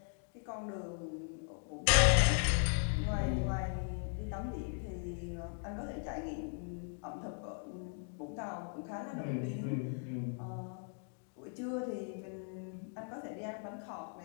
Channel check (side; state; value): right; silent; 52 dB below the other